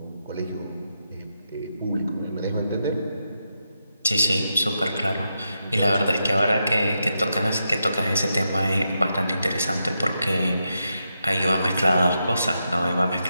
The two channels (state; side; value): inverted; both; correlation -0.85